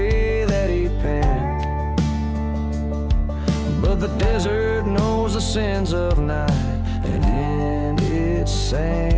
that he penned. But the desert knows the sins of night, and in its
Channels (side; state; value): both; identical; correlation 1.00